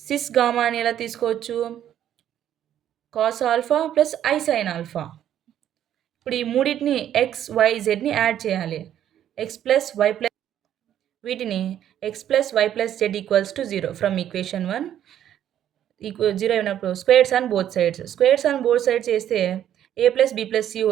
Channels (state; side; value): quieter; left; 10.8 dB